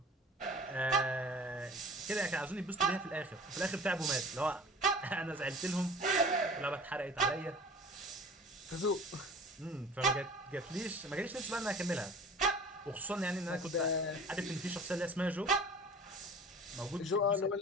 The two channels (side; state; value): both; normal; correlation 0.42